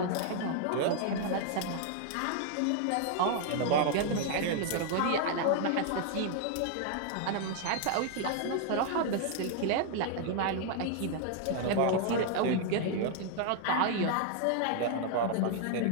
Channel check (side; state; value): both; different; correlation 0.00